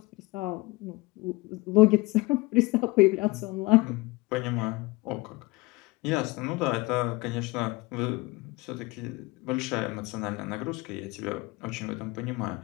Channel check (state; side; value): quieter; right; 22.2 dB